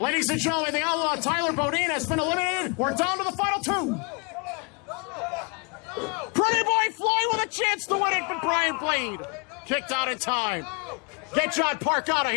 and gentlemen, the outlaw Tyler Bodine has been eliminated. We're down to the final 2. Pretty Boy Floyd with a chance to win it, but Brian Blade kicked out in time. Get John Park out of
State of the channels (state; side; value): quieter; right; 34.9 dB